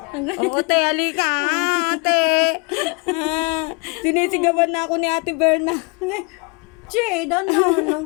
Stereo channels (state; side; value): quieter; right; 31.8 dB